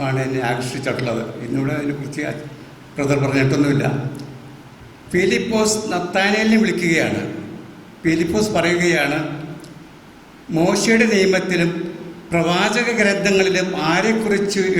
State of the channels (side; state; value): both; identical; correlation 1.00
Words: ആണ് എന്നെ ആകർഷിച്ചിട്ടുള്ളത്. ഇന്നിവിടെ അതിനെക്കുറിച്ച് ബ്രദർ പറഞ്ഞിട്ടൊന്നുമില്ല. ഫിലിപ്പോസ് നത്താനേലിനെ വിളിക്കുകയാണ്. ഫിലിപ്പോസ് പറയുകയാണ്, മോശയുടെ നിയമത്തിലും പ്രവാചക ഗ്രന്ഥങ്ങളിലും ആരെക്കുറിച്ച്